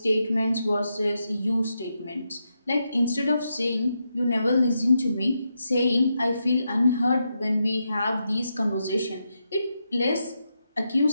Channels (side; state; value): both; inverted; correlation -0.84